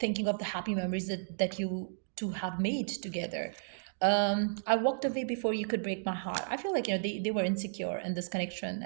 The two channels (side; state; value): left; silent; digital silence